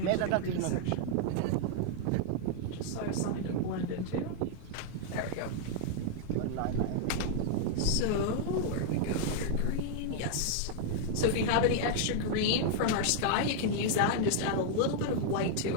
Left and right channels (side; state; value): both; different; correlation 0.00